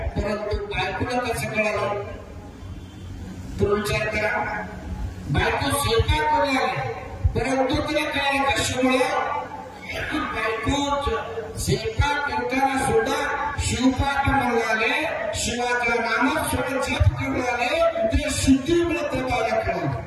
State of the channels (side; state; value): both; identical; correlation 1.00